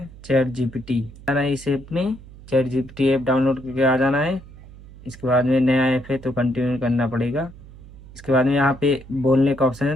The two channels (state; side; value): noise; right; hum, 19 dB below the sound